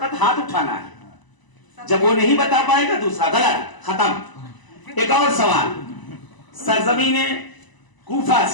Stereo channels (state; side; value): late; right; 1.0 ms